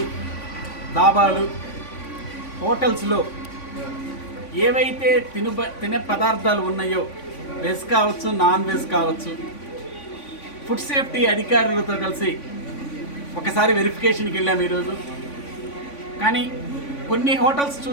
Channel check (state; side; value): late; right; 3.5 ms